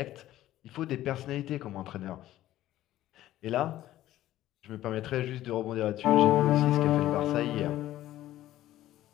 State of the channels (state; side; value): quieter; right; 14.1 dB